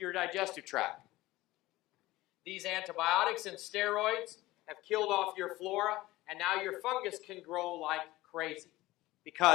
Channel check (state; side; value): quieter; right; 18.2 dB